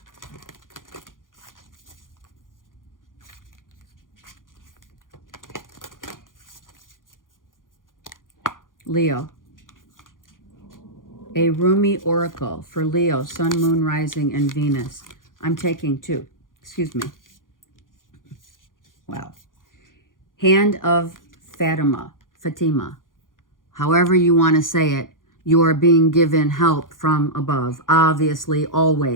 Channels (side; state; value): right; late; 0.90 ms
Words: Leo. A Rumi oracle for Leo, Sun, Moon, Rising, and Venus. I'm taking 2. Excuse me. Wow. Hand of Fatima. However you want to say it, you are being given help from above. Obviously,